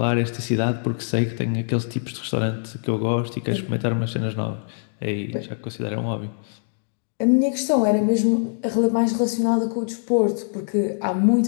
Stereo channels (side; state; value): right; silent; digital silence